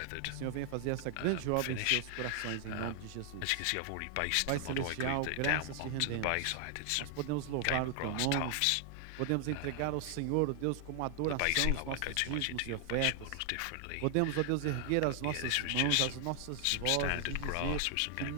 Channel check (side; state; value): both; different; correlation 0.00